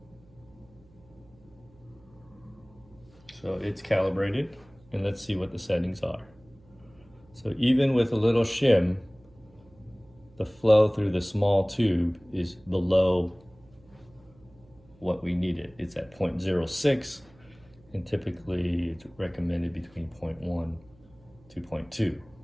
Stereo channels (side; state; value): right; noise; hum, 27 dB below the sound